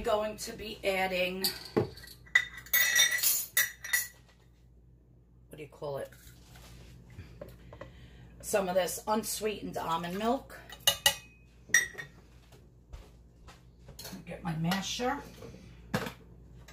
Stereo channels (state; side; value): identical; both; correlation 1.00